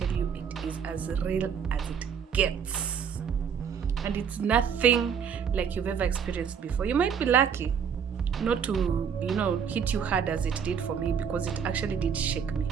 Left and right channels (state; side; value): quieter; left; 7.2 dB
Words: you it is as real as it gets. And it's nothing like you've ever experienced before. You might be lucky not to, you know, hit you hard as it did for me, because it actually did shake me.